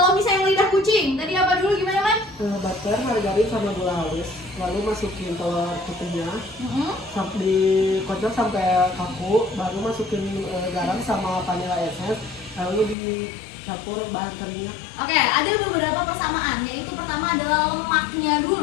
misalnya lidah kucing, tadi apa dulu gimana, Man? Butter, margarin sama gula halus. Lalu masukin telur putihnya, sampai dikocok sampai kaku. Baru masukin garam sama vanilla essence. Lalu dicampur bahan keringnya. Oke, ada beberapa persamaan. Yaitu pertama adalah lemaknya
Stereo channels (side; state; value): right; drops out; at 13.0 s